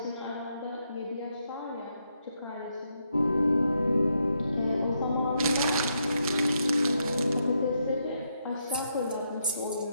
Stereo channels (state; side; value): inverted; both; correlation -0.79